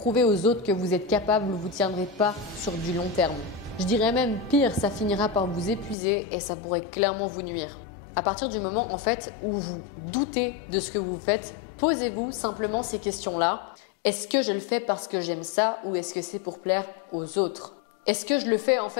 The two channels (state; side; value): drops out; right; at 6.0 s